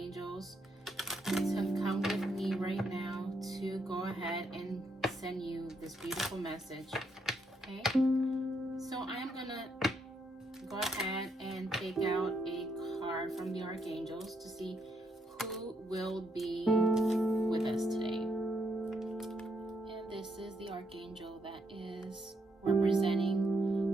to come with me right now to go ahead and send you this beautiful message. Okay, so I'm gonna go ahead and take out a card from the archangels to see who will be with us today. And this is the archangel that is representing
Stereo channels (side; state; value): both; normal; correlation 0.76